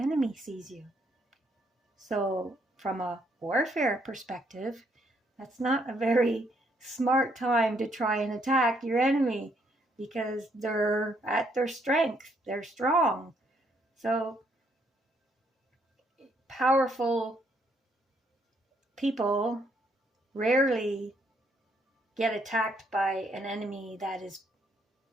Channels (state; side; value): normal; both; correlation 0.71